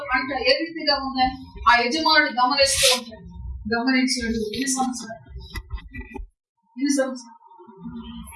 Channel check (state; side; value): identical; both; correlation 1.00